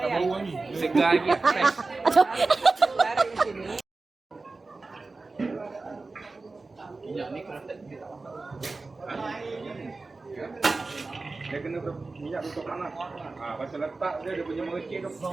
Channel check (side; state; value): left; quieter; 3.6 dB